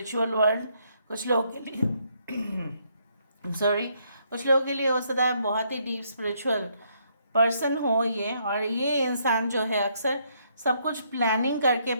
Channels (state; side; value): inverted; both; correlation -0.72